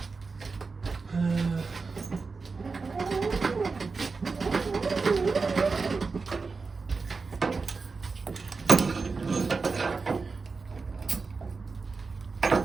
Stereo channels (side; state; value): left; quieter; 4.4 dB